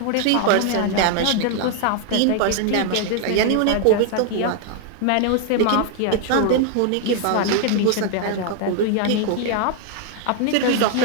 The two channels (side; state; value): both; different; correlation 0.00